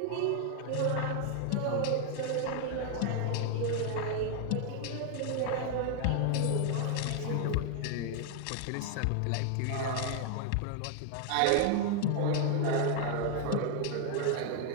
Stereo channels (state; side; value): different; both; correlation 0.00